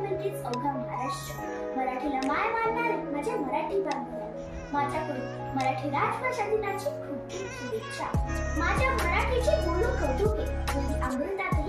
अवघा महाराष्ट्र। मराठीला माय मानणारे माझे मराठी बांधव, माझ्याकडून मराठी राजभाषा दिनाची खूप खूप शुभेच्छा। माझ्या मराठीचे बोलू कौतुके, म्हणजे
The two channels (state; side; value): identical; both; correlation 1.00